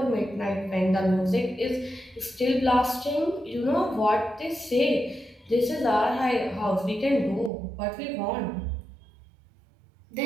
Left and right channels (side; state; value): left; drops out; at 7.5 s